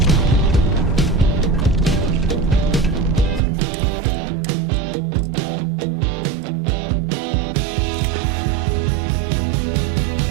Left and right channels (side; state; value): left; drops out; at 3.4 s